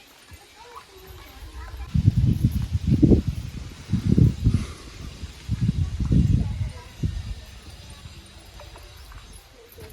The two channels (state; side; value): identical; both; correlation 1.00